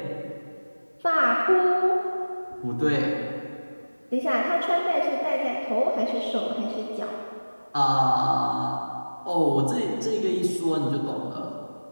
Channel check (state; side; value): inverted; both; correlation -1.00